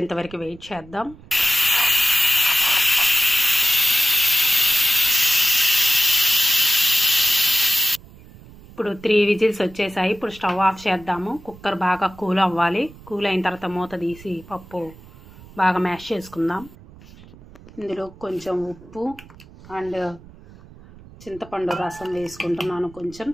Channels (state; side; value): noise; right; rumble, 21 dB below the sound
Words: వరకు వెయిట్ చేద్దాం. ఇప్పుడు 3 విజిల్స్ వచ్చేసాయి. ఇప్పుడు స్టవ్ ఆఫ్ చేద్దాము. కుక్కర్ బాగా కూల్ అవ్వాలి. కూల్ అయిన తర్వాత మూత తీసి పప్పు బాగా మ్యాష్ చేసుకుందాం. ఇందులో కొంచెం ఉప్పు అండ్ చింతపండు రసం వేసుకుంటున్నాను. కొంచెం